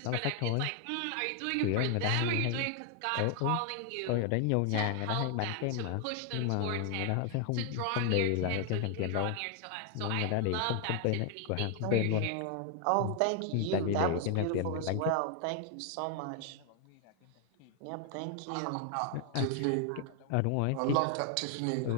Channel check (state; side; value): different; both; correlation 0.00